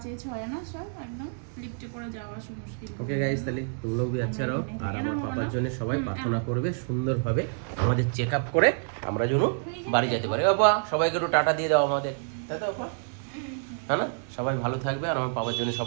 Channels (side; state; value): left; silent; 59 dB below the other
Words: 6-এ না, সব একদম লিফটে করে যাওয়া মুশকিল। ওকে গাইস, তাহলে তুম লোগ ভি আচ্ছা রহো। আর আমার পাপার জন্য সবাই প্রার্থনা করবে সুন্দরভাবে, আমাদের চেক আপ করে আমরা যেন বাড়ি যেতে পারি। বাবা সবাইকে একটু টাটা দিয়ে দাও আমাদের, তাই তো বাবা? হ্যাঁ না? সবাই ভালো থাকবে, আর আমার পাপার জন্য